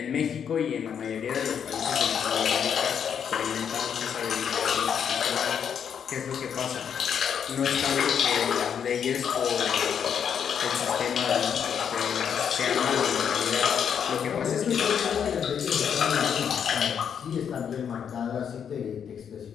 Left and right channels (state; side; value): quieter; right; 7.9 dB